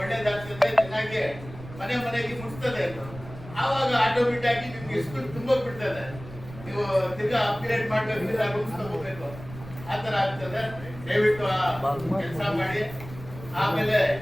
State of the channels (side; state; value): right; noise; rumble, 15 dB below the sound